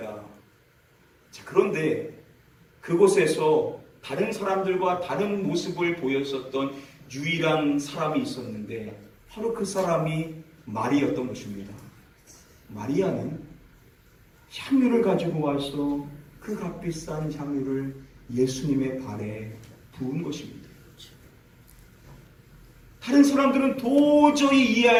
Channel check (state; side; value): identical; both; correlation 1.00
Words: 자, 그런데 그곳에서 다른 사람들과 다른 모습을 보였었던 유일한 사람이 있었는데 바로 그 사람이 마리였던 것입니다. 마리아는 향유를 가지고 와서 그 값비싼 향유를 예수님의 발에 부은 것입니다. 다른 사람들은 도저히